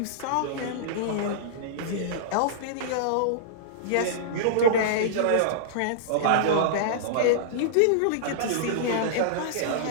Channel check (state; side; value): different; both; correlation -0.03